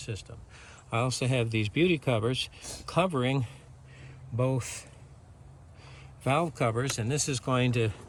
I also have these beauty covers covering both valve covers, and this is going to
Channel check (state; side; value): identical; both; correlation 1.00